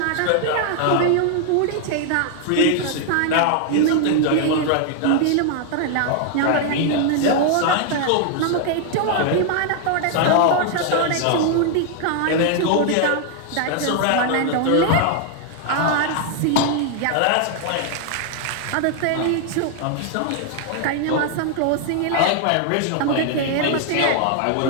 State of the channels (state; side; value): different; both; correlation 0.00